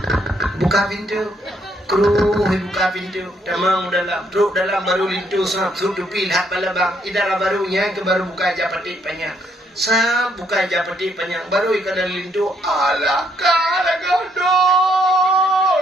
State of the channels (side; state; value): both; normal; correlation 0.71